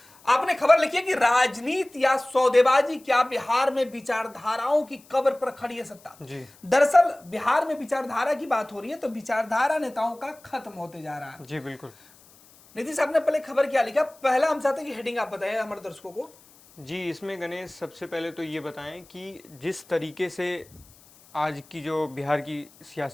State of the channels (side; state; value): left; noise; hiss, 26 dB below the sound